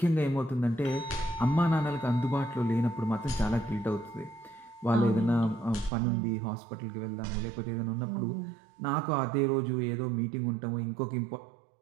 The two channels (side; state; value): left; drops out; at 5.9 s